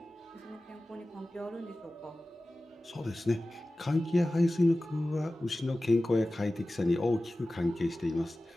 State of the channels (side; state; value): both; normal; correlation 0.96